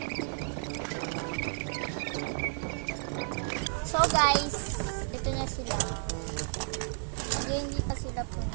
So guys, ito na sila. Hindi pa sila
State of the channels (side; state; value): left; silent; 56 dB below the other